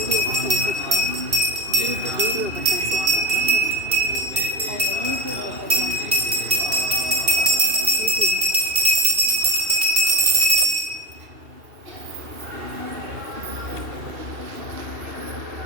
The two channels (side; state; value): left; late; 2.7 ms